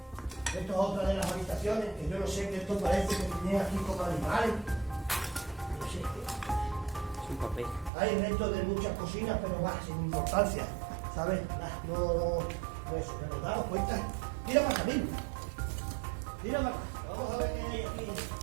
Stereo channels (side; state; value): left; drops out; at 7.9 s